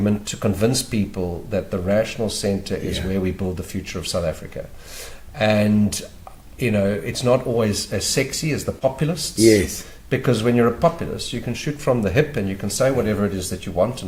to convince people that the rational centre is where we build the future of South Africa. And, it's not always as sexy as the populists. Yes. Because when you're a populist, you can shoot from the hip and you can say whatever it is that you want,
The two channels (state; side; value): identical; both; correlation 1.00